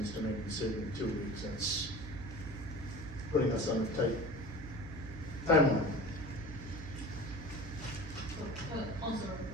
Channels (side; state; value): right; noise; hum, 10 dB below the sound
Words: us to make a decision in 2 weeks. That's putting us on a tight timeline. Also,